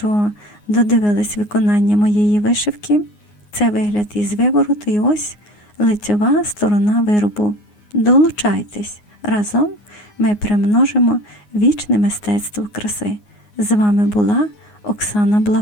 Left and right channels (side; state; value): right; late; 9.6 ms